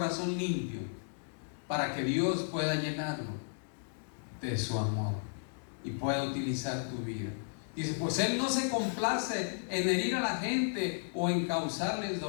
limpio, para que Dios pueda llenarlo de su amor y pueda utilizar tu vida. Dice, pues Él no se complace en herir a la gente o en causarles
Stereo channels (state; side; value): silent; right; digital silence